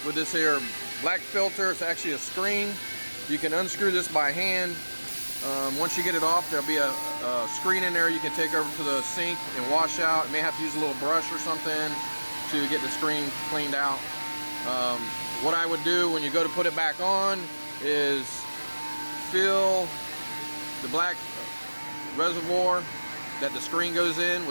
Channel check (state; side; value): inverted; both; correlation -1.00